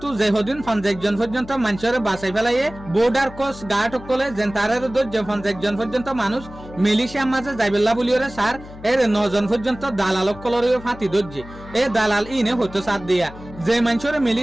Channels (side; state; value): left; noise; hum, 16 dB below the sound